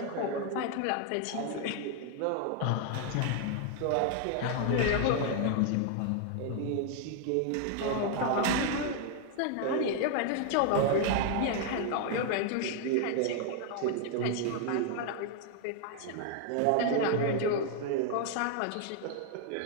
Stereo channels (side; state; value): both; different; correlation 0.00